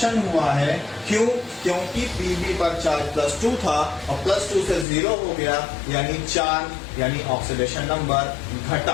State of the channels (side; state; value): right; drops out; at 4.9 s